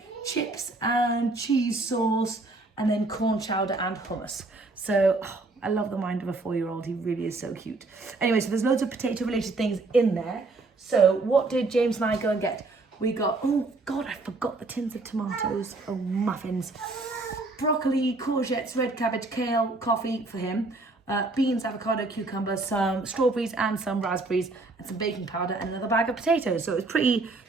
chips and cheese sauce, and then corn chowder and hummus. So I love the mind of a 4-year-old. He really is so cute. Anyway, so there's loads of potato related things in there. So what did James and I go and get? We got, oh God, I forgot the tins of tomatoes. Oh, muffins. Broccoli, courgettes, red cabbage, kale, coffee for him. Beans, avocado, cucumber, some strawberries and some raspberries, and some baking powder, and another bag of potatoes. So it was pretty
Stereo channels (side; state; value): left; quieter; 3.3 dB